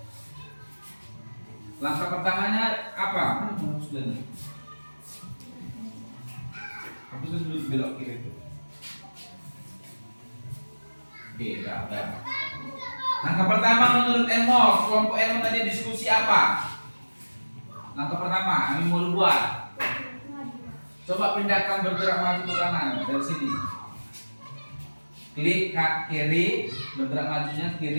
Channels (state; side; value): inverted; both; correlation -1.00